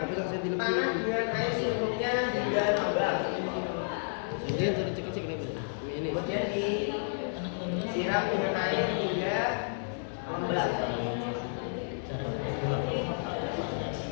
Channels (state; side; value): silent; right; 57 dB below the other